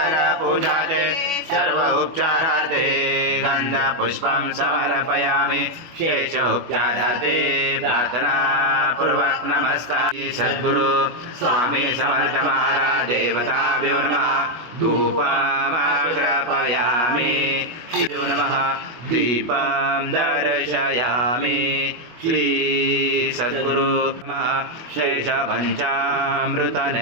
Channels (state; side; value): late; left; 25 ms